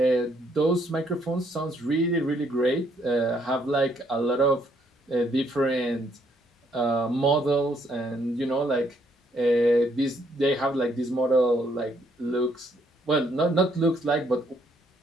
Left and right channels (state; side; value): normal; both; correlation 0.69